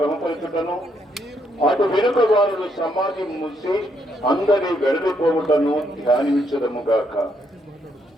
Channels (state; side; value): normal; both; correlation 0.74